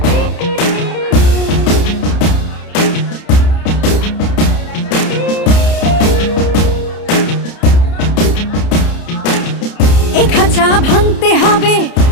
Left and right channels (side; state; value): right; late; 30 ms